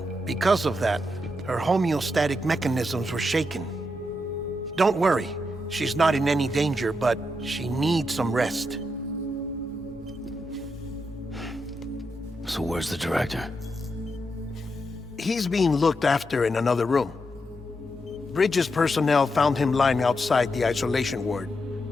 Because of that, her homeostatic mechanisms were shaken. Don't worry, she's not in any danger, but she needs some rest. So where's the director? He's being looked after in another room. Bridges personnel found him lying outside the isolation ward,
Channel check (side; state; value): both; normal; correlation 0.84